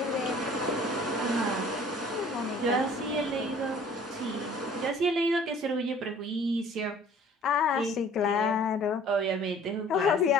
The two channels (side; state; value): both; normal; correlation 0.51